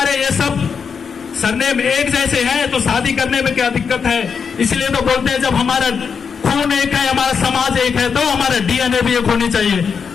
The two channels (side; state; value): right; quieter; 6.2 dB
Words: ये सब सरनेम एक जैसे हैं तो शादी करने में क्या दिक्कत है? इसलिए तो बोलते हैं जब हमारा खून एक है, हमारा समाज एक है, तो हमारा डीएनए भी एक होनी चाहिए।